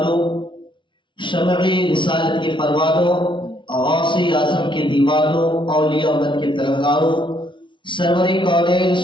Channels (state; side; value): late; right; 0.24 ms